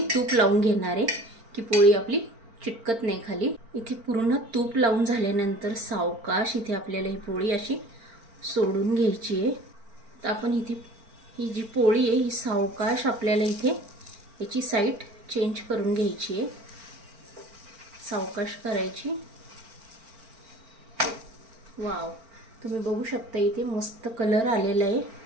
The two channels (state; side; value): late; left; 4.4 ms